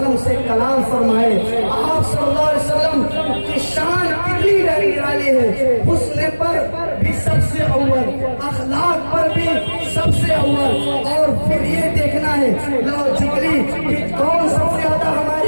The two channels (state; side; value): inverted; both; correlation -1.00